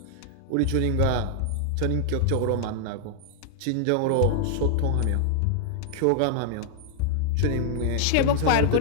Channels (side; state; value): both; different; correlation -0.01